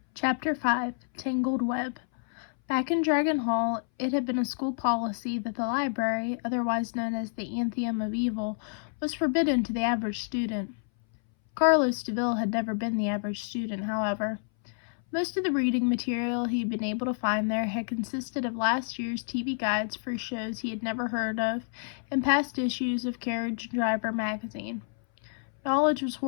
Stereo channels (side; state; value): right; silent; 59 dB below the other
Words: Chapter 5 Tangled Web. Back in Dragon Hall, it had been a school policy that the library, otherwise known as the Anthium of Evil, was forbidden to the average student. Carlos DeVille had never been the average student, however. Most of the reading material he had been able to find there had consisted of last year's TV guides for shows he had never heard of and past issues of Carriage Driver magazine. Knowledge was